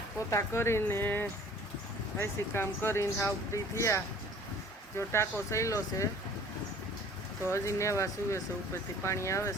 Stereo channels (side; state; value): both; normal; correlation 0.50